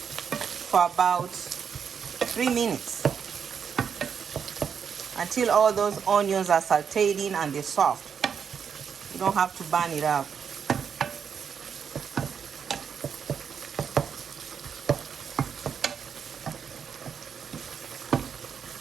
about 3 minutes until all those onions are sauteed in and they're soft. You don't have to burn it up.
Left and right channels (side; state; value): left; quieter; 7.0 dB